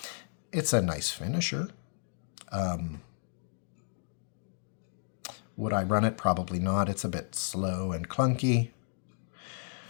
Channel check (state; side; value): silent; right; 56 dB below the other